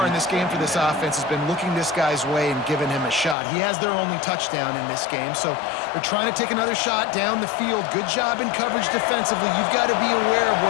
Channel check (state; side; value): drops out; right; at 3.4 s